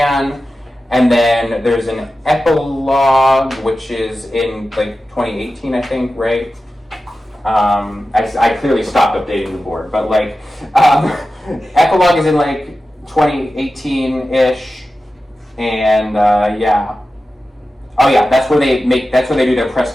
And then there's an epilogue, which is in like 2018, I think, right? I clearly stopped updating the board, but like, epilogue is in like 2018-ish, and yeah. Oh yeah, that's where they do their press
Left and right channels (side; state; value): both; normal; correlation 0.93